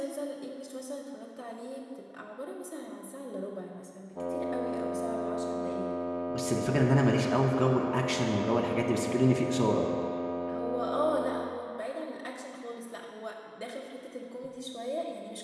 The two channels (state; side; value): identical; both; correlation 1.00